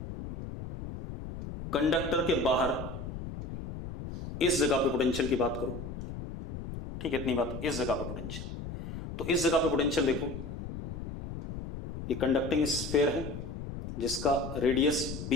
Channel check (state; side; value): noise; left; rumble, 8 dB below the sound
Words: कंडक्टर के बाहर इस जगह पे पोटेंशियल की बात करो, ठीक है, इतनी बात, इस जगह पे पोटेंशियल, तो इस जगह पे पोटेंशियल देखो, ये कंडक्टिंग स्फीयर है जिसका रेडियस